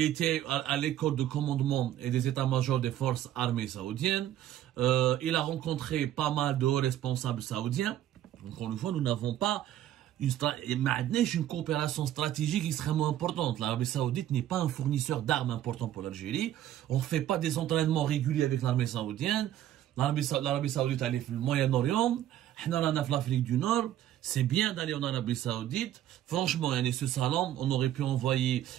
était à l'école de commandement et des états-majors des forces armées saoudiennes. Il a rencontré pas mal de hauts responsables saoudiens. Encore une fois, nous n'avons pas une coopération stratégique extrêmement importante. L'Arabie Saoudite n'est pas un fournisseur d'armes important pour l'Algérie. On ne fait pas des entraînements réguliers avec l'armée saoudienne. L'Arabie Saoudite a le Moyen-Orient. On a l'Afrique du Nord. C'est bien d'aller en Arabie Saoudite. Franchement, ce salon, on aurait pu envoyer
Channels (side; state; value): left; quieter; 12.2 dB